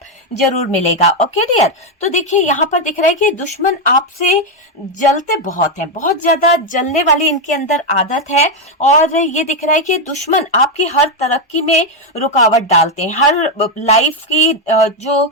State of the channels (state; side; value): normal; both; correlation 0.04